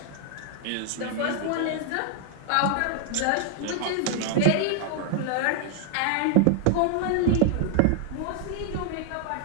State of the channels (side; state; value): both; different; correlation 0.00